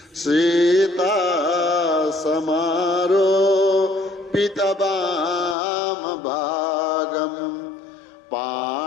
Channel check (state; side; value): drops out; right; at 5.6 s